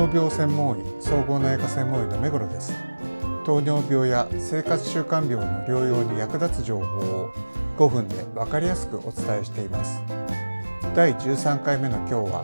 病専門医総合内科専門医の目黒です。糖尿病や生活習慣病の療養に役立つ情報を5分で分かりやすくお伝えしています。第13回目の今日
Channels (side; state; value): both; inverted; correlation -1.00